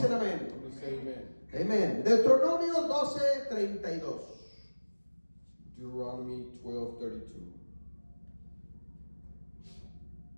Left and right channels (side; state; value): both; inverted; correlation -1.00